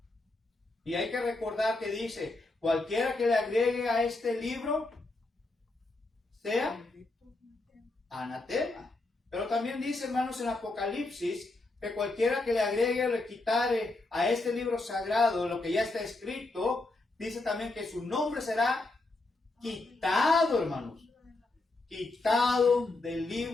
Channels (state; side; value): quieter; right; 3.1 dB